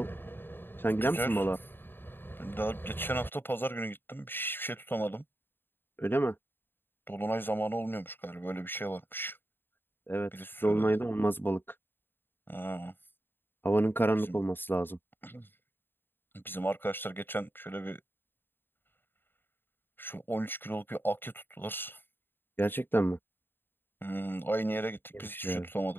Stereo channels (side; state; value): right; late; 0.099 ms